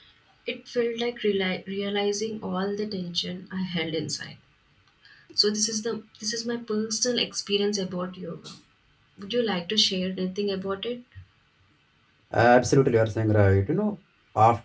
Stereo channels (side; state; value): both; identical; correlation 1.00